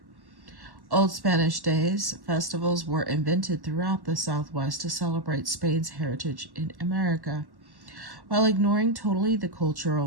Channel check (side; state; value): left; late; 1.1 ms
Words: Old Spanish Days festivals were invented throughout the Southwest to celebrate Spain's heritage in America, while ignoring totally the